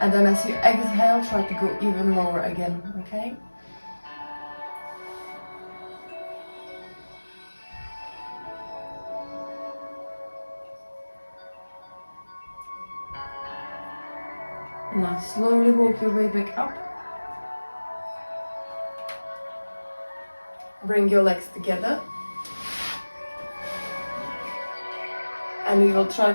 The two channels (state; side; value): inverted; both; correlation -1.00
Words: And then as you exhale, try to go even lower again, okay? Now slowly walk your way back up. Bring your legs together. And we will try